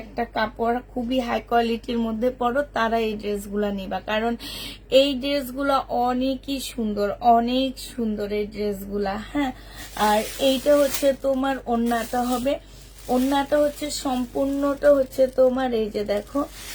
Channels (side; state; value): both; identical; correlation 1.00